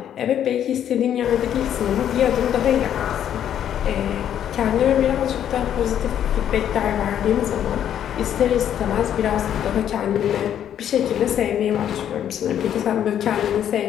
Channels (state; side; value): quieter; right; 10.0 dB